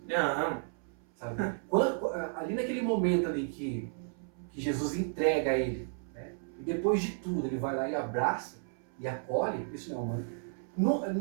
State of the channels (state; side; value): silent; left; 56 dB below the other